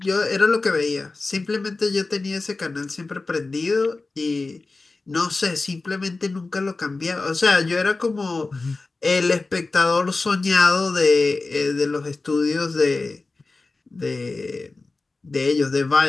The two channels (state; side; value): quieter; right; 3.6 dB